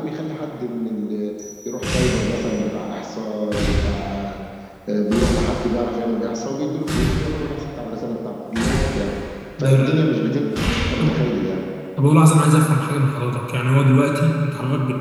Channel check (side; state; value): both; identical; correlation 1.00